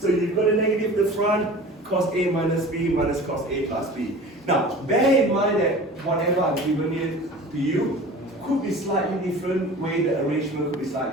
you've got a negative at the front, cos A minus B minus cos A plus B. Now, bear in mind that whatever I've given it to you could be slightly different, way the arrangement could be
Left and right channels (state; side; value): normal; both; correlation 0.40